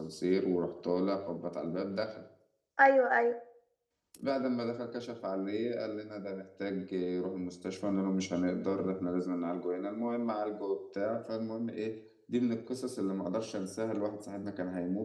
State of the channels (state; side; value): identical; both; correlation 1.00